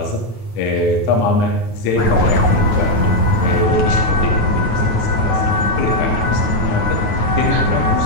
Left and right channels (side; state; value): right; late; 9.2 ms